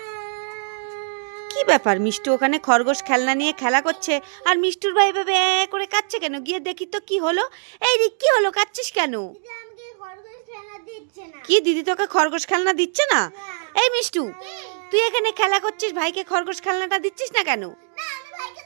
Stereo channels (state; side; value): silent; left; digital silence